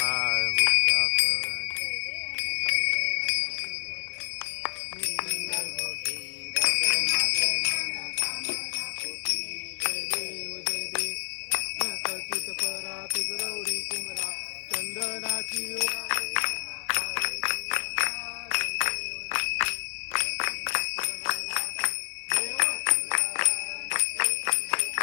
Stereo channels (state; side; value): silent; right; digital silence